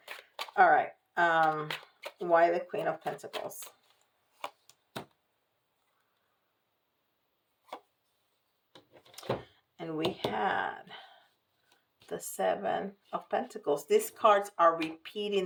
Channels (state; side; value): identical; both; correlation 1.00